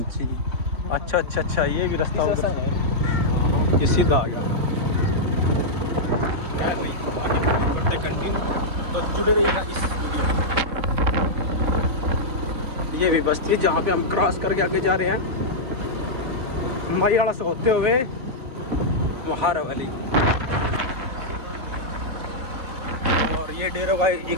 अच्छा अच्छा अच्छा, ये भी रास्ता ये सीधा तो जुड़े रहिएगा इस वीडियो में। ये भी बस्ती है जहाँ पे हम क्रॉस करके आगे जा रहे हैं वाला से होते हुए लोहार वाली। और ये डेरों का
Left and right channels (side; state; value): left; late; 3.7 ms